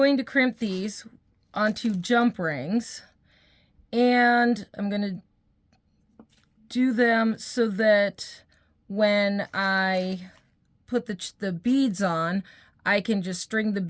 to crimp these onto jump rings, and I'm going to do them so that when I put the beads on, I can just string the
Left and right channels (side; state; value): both; identical; correlation 1.00